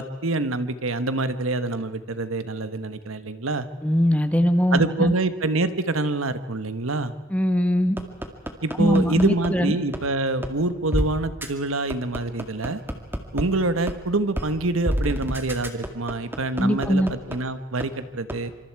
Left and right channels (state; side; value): normal; both; correlation 0.55